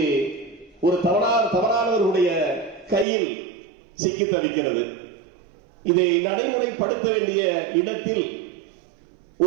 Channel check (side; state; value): left; drops out; at 3.1 s